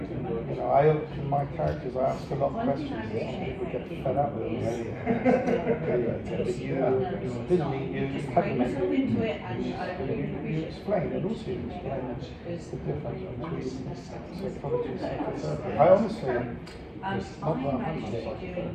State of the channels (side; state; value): both; identical; correlation 1.00